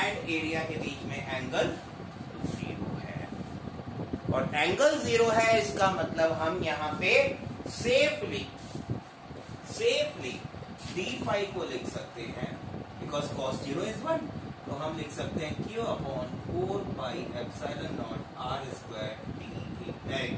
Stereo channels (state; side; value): identical; both; correlation 1.00